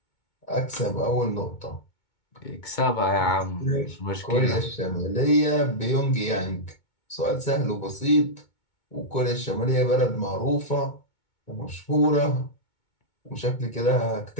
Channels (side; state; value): right; late; 2.2 ms